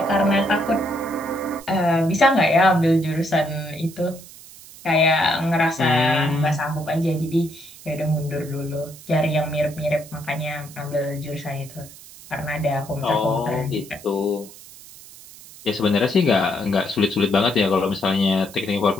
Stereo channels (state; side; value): noise; right; hiss, 19 dB below the sound